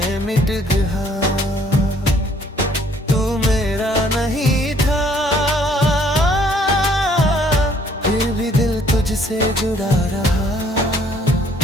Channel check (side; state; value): both; normal; correlation 0.62